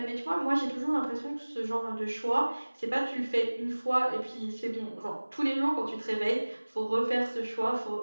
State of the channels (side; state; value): both; inverted; correlation -1.00